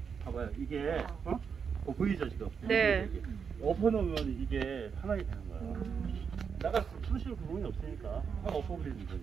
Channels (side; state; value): left; quieter; 6.4 dB